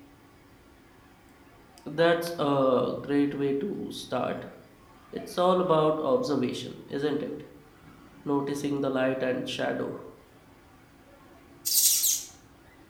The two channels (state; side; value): identical; both; correlation 1.00